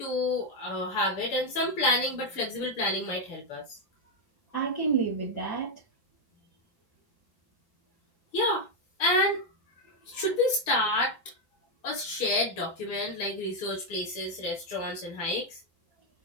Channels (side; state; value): right; late; 6.7 ms